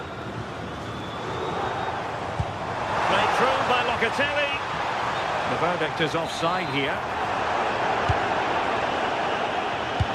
Played through by Locatelli. The verdict is offside here.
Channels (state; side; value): identical; both; correlation 1.00